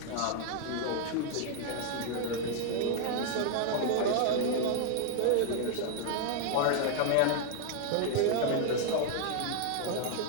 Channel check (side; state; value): both; different; correlation 0.00